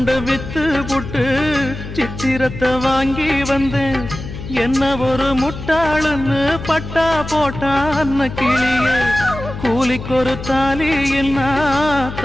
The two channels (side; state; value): left; noise; hum, 10 dB below the sound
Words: வித்து புட்டு சித்திரத்தை வாங்கி வந்தேன். என்ன ஒரு முட்டாளுன்னு பட்டா போட்டான் அன்ன கிளியே. கூலிக்கு ஒரு தாலி என்ன